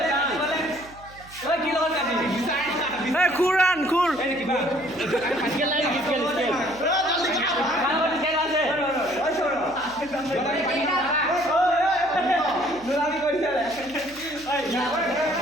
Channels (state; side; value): noise; right; hum, 22 dB below the sound